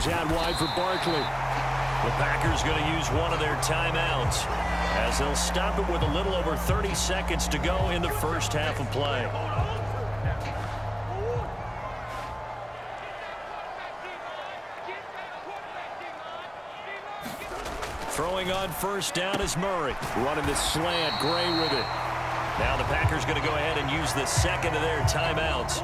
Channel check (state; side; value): identical; both; correlation 1.00